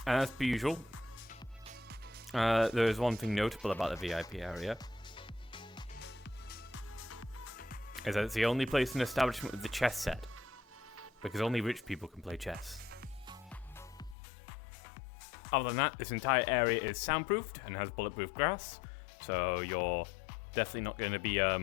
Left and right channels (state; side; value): drops out; right; at 14.2 s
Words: as per usual, there is one thing notable about the VIP area. Is that it's the only place in the establishment with the chess set. Because only rich people can play chess. Other than that, this entire area is soundproofed and has bulletproof glass. So you're definitely not going to be